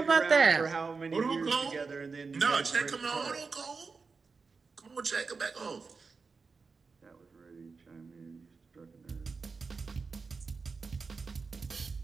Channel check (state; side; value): quieter; left; 4.6 dB